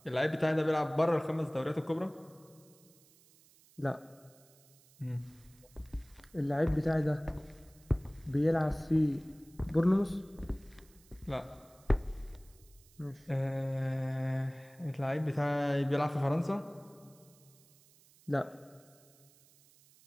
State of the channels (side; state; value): right; noise; hiss, 28 dB below the sound